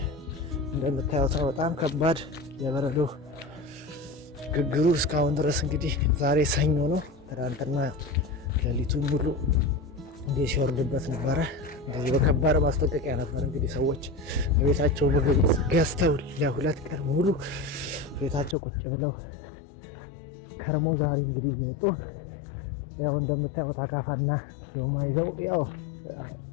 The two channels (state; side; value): drops out; right; at 18.6 s